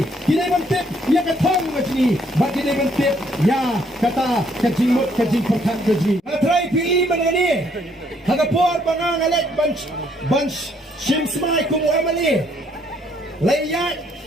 Kita tip yang kan thang ke sini. Bagi kita tip ya kata kejimut kejim perkat ke sini. Try pilih mana ni? Hagapor bangang alek bunch shimsmai kumu amali. Layat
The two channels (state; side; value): normal; both; correlation 0.68